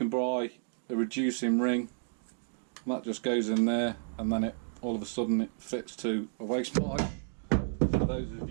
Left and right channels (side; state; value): left; silent; digital silence